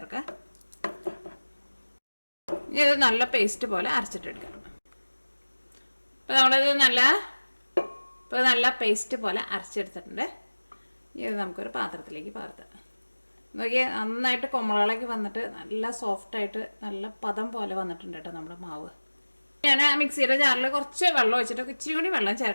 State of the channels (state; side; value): inverted; both; correlation -1.00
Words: ഇനി ഇത് നല്ല പേസ്റ്റ് പോലെ അരച്ചിട്ടെടുക്കാം. ഇപ്പോൾ നമ്മളിത് നല്ല പേസ്റ്റ് പോലെ അരച്ചെടുത്തിട്ടുണ്ട്. ഇത് നമുക്കൊരു പാത്രത്തിലേക്ക് പകർത്താം. നോക്കിയാൽ നന്നായിട്ട് കൊമ്മളകളൊക്കെ വന്നിട്ട് നല്ല സോഫ്റ്റായിട്ട് നല്ല പദം പോലെ വന്നിട്ടുണ്ട് കേട്ടോ നമ്മുടെ മാവ്. ഞാൻ മിക്സിയുടെ ജാറിൽ കുറച്ച് വെള്ളം ഒഴിച്ചിട്ട് ഇച്ചിരി കൂടി വെള്ളം